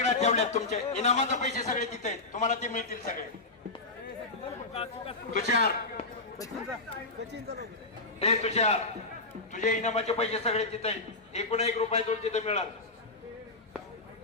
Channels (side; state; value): right; quieter; 3.3 dB